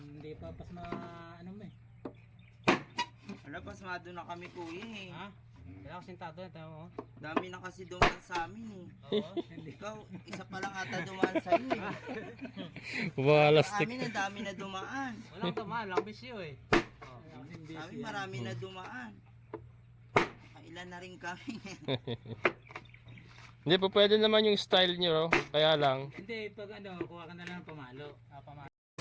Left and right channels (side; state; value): both; identical; correlation 1.00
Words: pa pas ano mo eh. Wala, pasmado na kami kuya eh. Ha? Kailangan ko sintado na tayo mo. Dami na kasi dumaan sa amin eh. Oo, hindi. Ikaw, isa pa lang ata dumaan sa iyo eh. Sa Walastik. amin, ang dami na dumaan. Walang tamaan, lang bisyo eh. Oh. Sa amin, marami na dumaan. Ilan na rin kami. Hindi po pwede naman yung style nyo, kaya lang. Hindi, pag ano, kuha ka na lang ng pamalo. Pamalo.